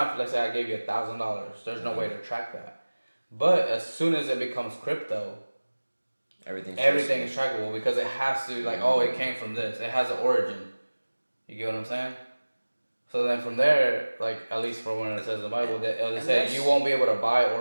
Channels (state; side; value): inverted; both; correlation -1.00